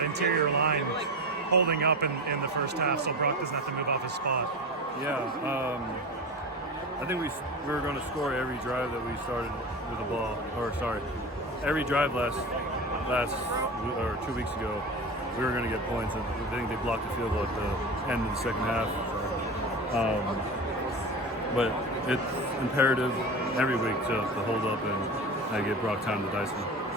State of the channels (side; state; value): both; normal; correlation 0.28